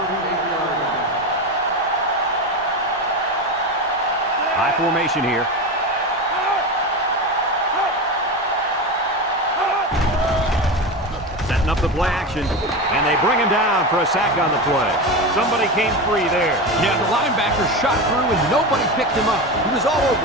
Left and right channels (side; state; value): both; normal; correlation 0.21